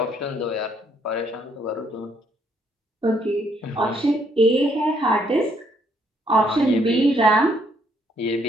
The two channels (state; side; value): normal; both; correlation 0.69